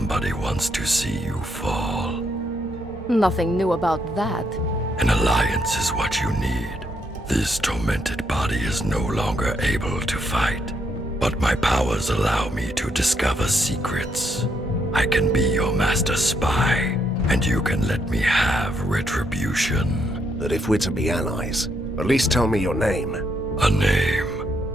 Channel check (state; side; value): normal; both; correlation 0.76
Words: wants to see you fall. Nothing new about that. An alliance is what you need. This tormented body is no longer able to fight, but my powers allow me to discover secrets. I can be your master spy, and you can let me have retribution. But if we're to be allies, at least tell me your name. A name?